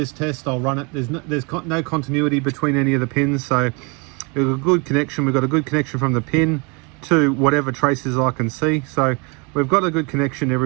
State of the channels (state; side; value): quieter; left; 31.1 dB